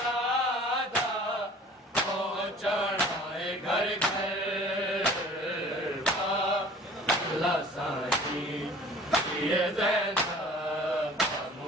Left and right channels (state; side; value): normal; both; correlation 0.47